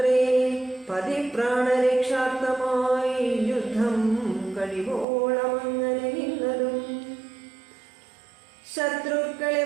പതിപ്രാണരക്ഷാർത്ഥമായി യുദ്ധം കഴിവോളമങ്ങനെ നിന്നതും ശത്രുക്കളെ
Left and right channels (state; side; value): drops out; left; at 5.1 s